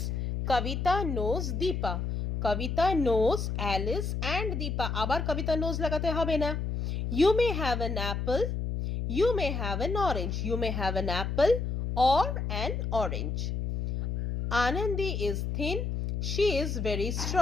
Kavita knows Deepa. Kavita knows Alice and Deepa. আবার Kavita knows লাগাতে হবে না. You may have an apple, you may have an orange. You may have an apple or an orange. Anandi is thin, she is very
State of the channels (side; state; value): left; noise; hum, 2 dB below the sound